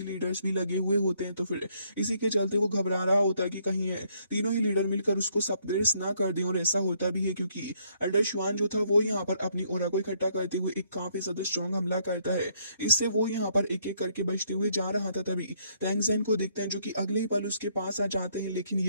लीडर्स भी लगे हुए होते हैं। तो फिर इसी के चलते वो घबरा रहा होता है कि कहीं है तीनों ही लीडर मिलकर उसको सप्रेस ना कर दें। और ऐसा होता भी है, क्योंकि एल्डर शुआन जो था वो यहाँ पर अपनी ओरा को इकट्ठा करते हुए एक काफी ज्यादा स्ट्रॉन्ग हमला करता है। इससे वो यहाँ पर एक एक करके बचते हुए जा रहा था। तभी तैंगजैन को देखते हैं, जो कि अगले ही पल उसके पास आ जाते हैं, लेकिन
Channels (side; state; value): both; inverted; correlation -0.70